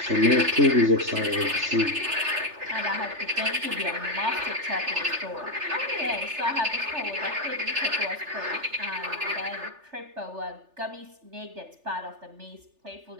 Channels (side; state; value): left; late; 3.4 ms